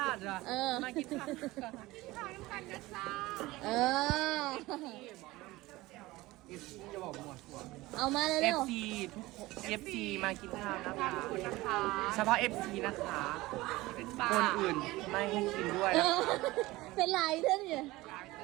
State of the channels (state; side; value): quieter; left; 19.4 dB